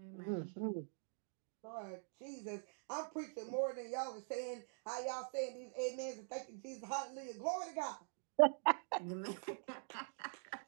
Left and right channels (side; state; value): left; silent; digital silence